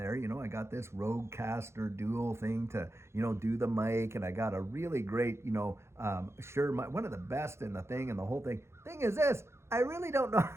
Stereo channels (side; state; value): left; late; 0.13 ms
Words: I got this Rodecaster dual thing to, do the mic. And I got a really great, one of the best in the thing and the whole thing. Thing is this, I really don't know.